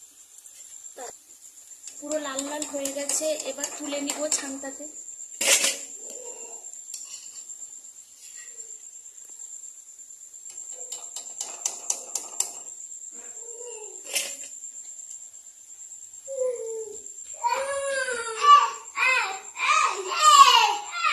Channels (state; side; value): identical; both; correlation 1.00